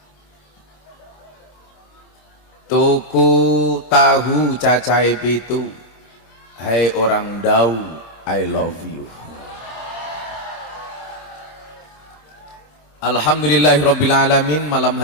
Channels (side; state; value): right; late; 26 ms